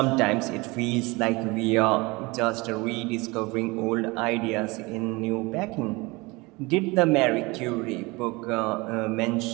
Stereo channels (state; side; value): quieter; left; 24.4 dB